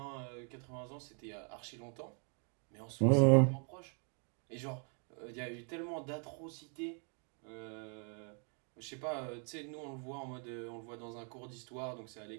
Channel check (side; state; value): left; quieter; 38.1 dB